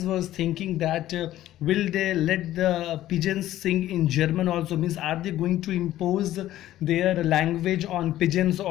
was thinking that will they let the pigeons sing in German also, means are they going to impose their language on pigeons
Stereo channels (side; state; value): right; quieter; 13.8 dB